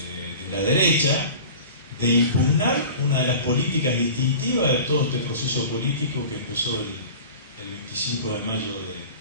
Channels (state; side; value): inverted; both; correlation -0.39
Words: la derecha de impugnar una de las políticas distintivas de todo este proceso político que empezó el 25 de mayo